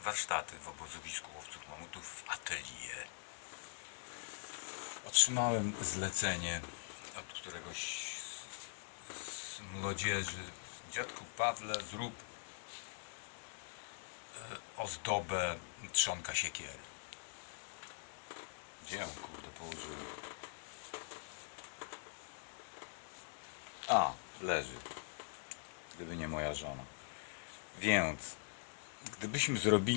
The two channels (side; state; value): right; silent; digital silence